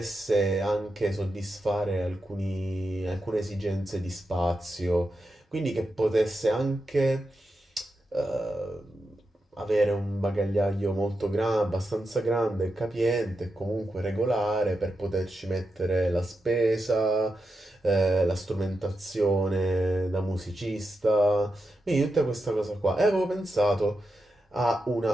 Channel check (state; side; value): normal; both; correlation 0.88